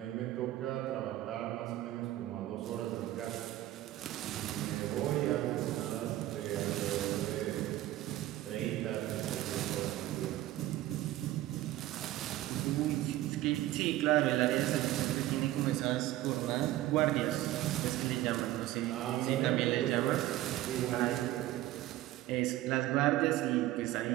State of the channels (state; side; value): quieter; left; 15.1 dB